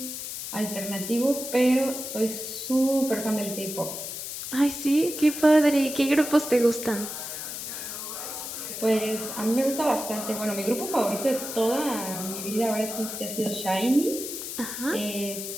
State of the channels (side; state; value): left; noise; hiss, 7 dB below the sound